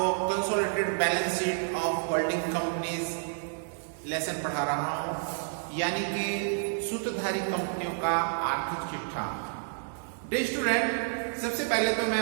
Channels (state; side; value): silent; left; digital silence